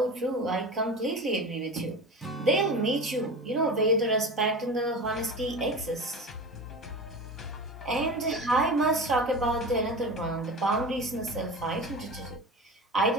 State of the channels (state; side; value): normal; both; correlation 0.30